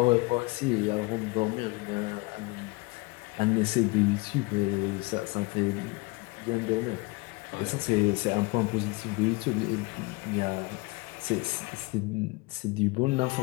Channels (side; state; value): right; quieter; 24.9 dB